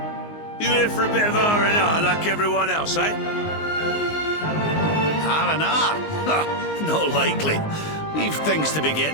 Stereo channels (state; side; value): late; right; 19 ms